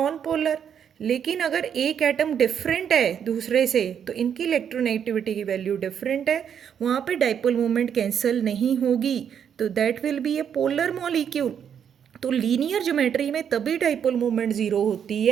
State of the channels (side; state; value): left; quieter; 8.3 dB